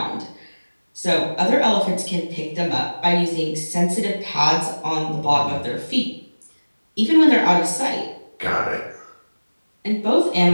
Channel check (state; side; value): inverted; both; correlation -1.00